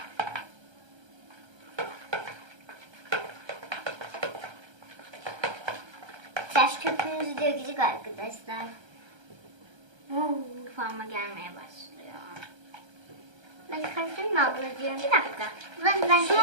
Taş köpüğümüzü dökecek arkadaşlar. Kıvama gelmeye başlıyor. Ben karıştırayım mı ablacığım? Bir dakika. Ben Şu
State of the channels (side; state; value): left; late; 1.3 ms